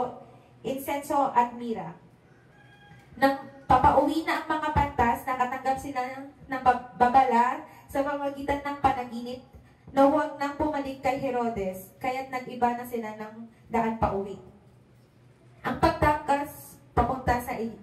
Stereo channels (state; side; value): identical; both; correlation 1.00